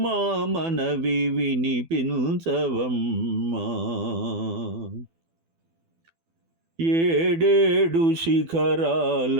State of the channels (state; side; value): late; left; 12 ms